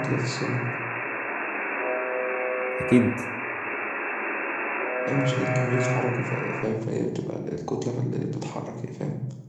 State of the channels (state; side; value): identical; both; correlation 1.00